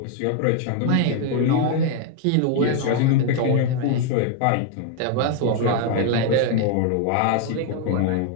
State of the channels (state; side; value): different; both; correlation 0.00